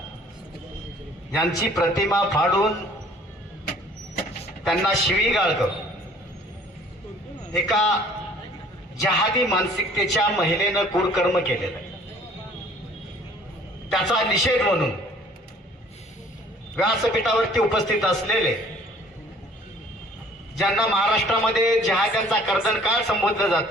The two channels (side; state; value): both; normal; correlation 0.54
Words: यांची प्रतिमा फाडून त्यांना शिवीगाळ करून एका जहादी मानसिकतेच्या महिलेनं क्रूरकर्म केलेलं आहे. त्याचा निषेध म्हणून व्यासपीठावरती उपस्थित असलेले ज्यांना महाराष्ट्रामध्ये जहाद्यांचा कर्दनकाळ संबोधलं